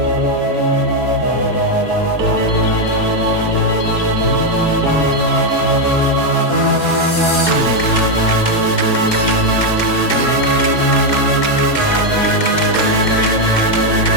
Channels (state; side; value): late; right; 2.2 ms